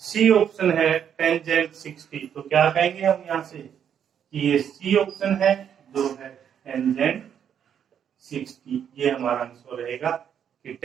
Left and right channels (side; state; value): left; quieter; 8.6 dB